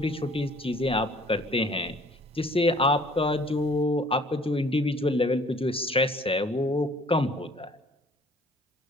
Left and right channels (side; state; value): both; normal; correlation 0.55